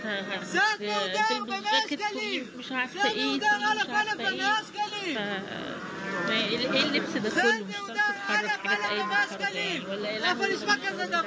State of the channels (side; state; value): both; identical; correlation 1.00